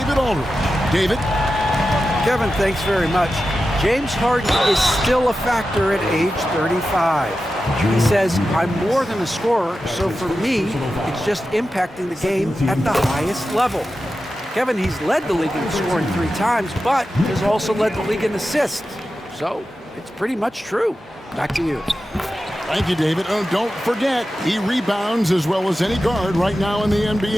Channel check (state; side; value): normal; both; correlation 0.92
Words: Aldridge. David? Kevin, thanks very much. James Harden is still a factor at age 35. He says, I'm more than a scorer, so for me, it's just impacting the game at the highest level. Kevin, he's led the league in scoring 3 times, but has also led the league in assists. So it's pretty much true. Back to you. Thank you, David. Oh, don't forget, he rebounds as well as any guard right now in the